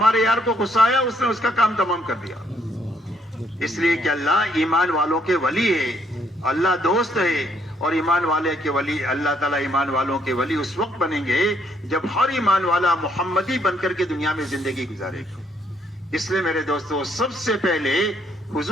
یار کو غصہ آیا, اس نے اس کا کام تمام کر دیا. اس لیے کہ اللہ ایمان والوں کے ولی ہے, اللہ دوست ہے. اور ایمان والے کے ولی, اللہ تعالیٰ ایمان والوں کے ولی اس وقت بنیں گے جب ہر ایمان والا محمدی بن کر کے دنیا میں زندگی گزارے گا. اس لیے میرے دوستو, سب سے پہلے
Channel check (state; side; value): normal; both; correlation 0.70